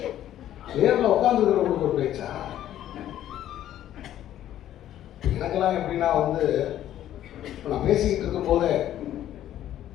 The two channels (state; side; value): quieter; right; 12.0 dB